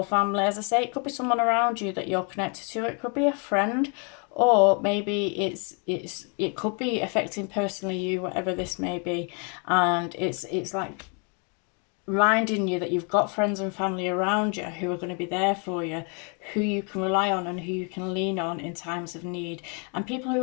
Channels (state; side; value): quieter; right; 36.9 dB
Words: family. As I say, it could be someone around you that you're connected to. It could be a friend, or maybe it could be affecting personally you, whatever this may be. And it's like reminding you that you've got friends and family around you who are going to be there for you, who you can rely on and who you can lean on in times of need, and people who